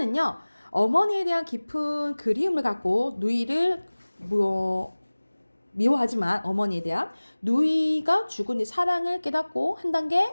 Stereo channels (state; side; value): inverted; both; correlation -1.00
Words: 어머니에 대한 깊은 그리움을 갖고 누이를 미워하지만 어머니에 대한 누이가 죽은 뒤 사랑을 깨닫고 한 단계